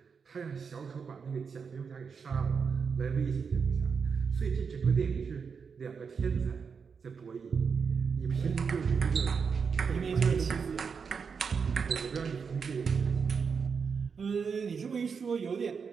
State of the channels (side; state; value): left; quieter; 5.9 dB